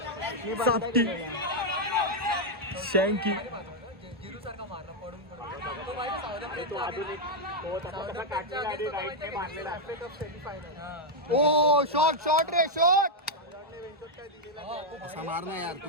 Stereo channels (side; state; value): both; normal; correlation -0.01